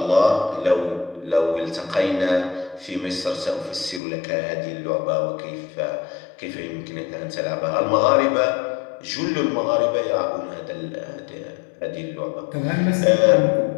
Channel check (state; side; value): drops out; right; at 4.0 s